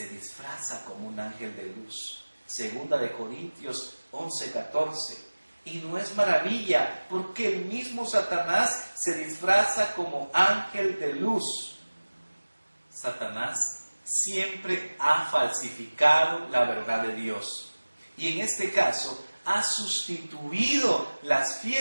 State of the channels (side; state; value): both; inverted; correlation -1.00